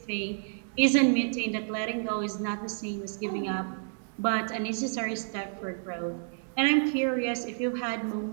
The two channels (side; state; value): left; silent; digital silence